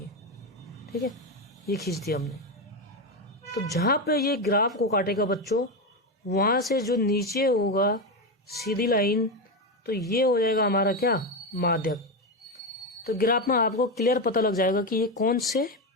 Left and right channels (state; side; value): normal; both; correlation 0.12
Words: ठीक है, ये खींच दिया हमने। तो जहाँ पे ये ग्राफ को काटेगा बच्चों, वहाँ से जो नीचे होगा सीधी लाइन, तो ये हो जाएगा हमारा क्या, माध्यक। तो ग्राफ में आपको क्लियर पता लग जाएगा कि ये कौन से